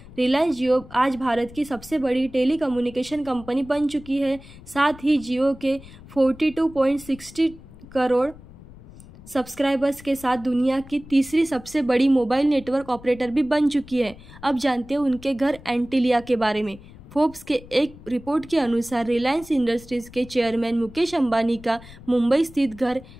रिलायंस जियो आज भारत की सबसे बड़ी टेलीकम्युनिकेशन कंपनी बन चुकी है। साथ ही जियो के 42.60 करोड़ सब्सक्राइबर्स के साथ दुनिया की तीसरी सबसे बड़ी मोबाइल नेटवर्क ऑपरेटर भी बन चुकी है। अब जानते हैं उनके घर एंटीलिया के बारे में। फोर्ब्स के एक रिपोर्ट के अनुसार रिलायंस इंडस्ट्रीज के चेयरमैन मुकेश अंबानी का मुंबई स्थित घर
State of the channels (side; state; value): left; noise; rumble, 19 dB below the sound